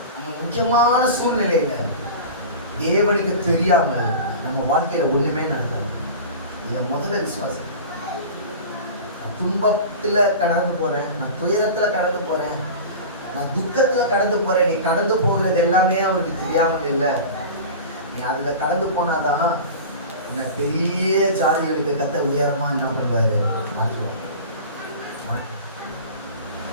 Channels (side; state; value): both; inverted; correlation -0.33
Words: நம்ம முக்கியமான சூழ்நிலையில தேவனுக்கு தெரியாமல் நம்ம வாழ்க்கையில ஒண்ணுமே நடக்காது. இதை முதல்ல விசுவாசம். நான் துன்பத்துல கடந்து போறேன், நான் துயரத்துல கடந்து போறேன், நான் துக்கத்துல கடந்து போறேன். நீ கடந்து போகிறது எல்லாமே அவனுக்கு தெரியாமல் இல்லை. நீ அதுல கடந்து போனாதான் பெரிய ஜாதிகளுக்கு கத்த உயரமா என்ன பண்ணுவாரு? மாற்றுவார்.